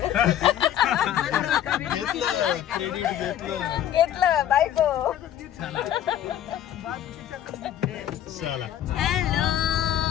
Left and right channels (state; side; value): quieter; right; 11.0 dB